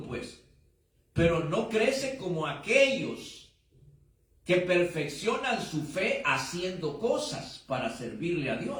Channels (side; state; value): both; identical; correlation 1.00